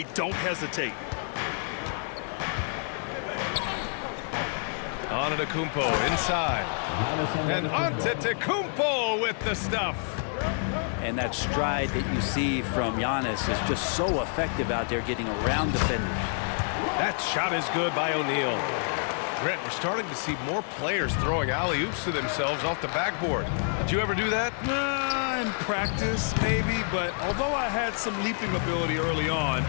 don't hesitate. Antetokounmpo inside. And Antetokounmpo with the stuff. And that stride that you see from Giannis is just so effective out there getting around defenders. That shot is good by O'Neal. Brent, we're starting to see more players throwing alley-oops to themselves off the backboard. Did you ever do that? In practice, maybe, but although I had some leaping ability early on,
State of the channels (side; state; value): right; silent; 59 dB below the other